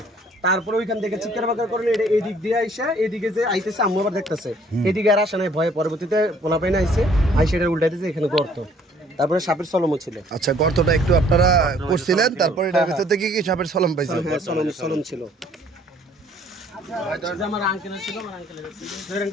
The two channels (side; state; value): both; normal; correlation 0.59